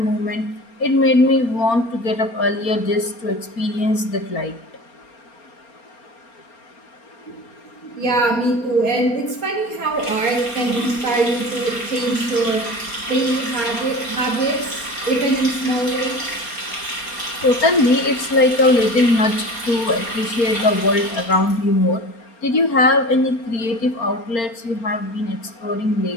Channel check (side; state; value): right; late; 4.3 ms